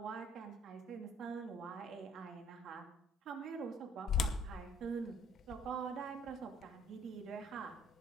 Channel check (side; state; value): both; normal; correlation 0.61